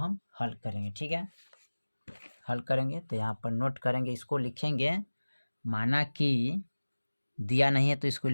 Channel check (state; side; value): inverted; both; correlation -1.00